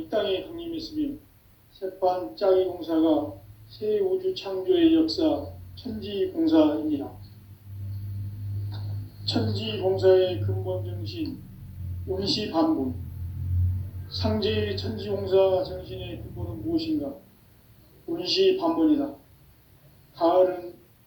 땅에 강림했으며 새반짝이 공사가 새 우주 창조의 역사 천지공사이니라. 천지공사의 근본 정신 운시반본. 상제의 천지공사 정신의 근본은 무엇인가? 운시반본이다. 가을은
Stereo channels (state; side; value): identical; both; correlation 1.00